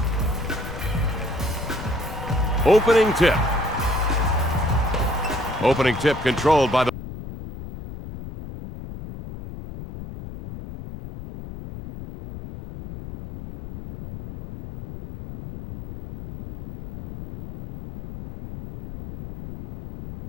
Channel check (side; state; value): left; noise; rumble, 11 dB below the sound